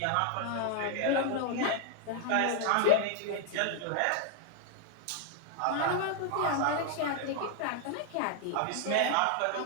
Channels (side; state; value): both; different; correlation 0.00